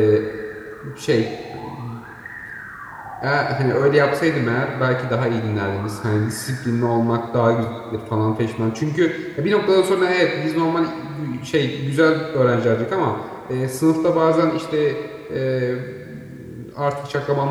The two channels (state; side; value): identical; both; correlation 1.00